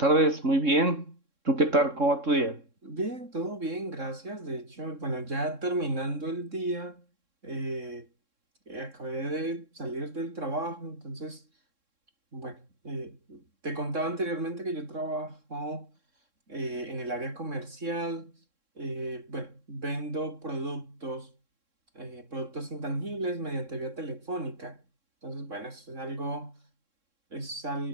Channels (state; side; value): late; left; 3.7 ms